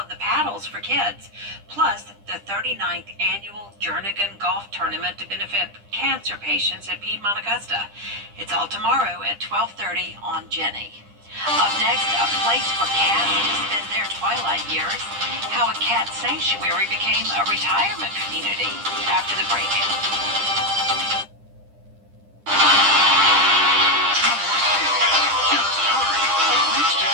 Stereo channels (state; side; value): late; left; 10 ms